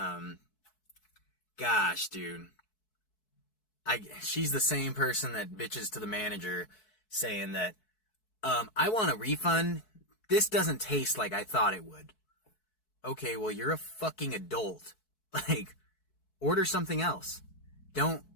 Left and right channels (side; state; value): right; late; 4.6 ms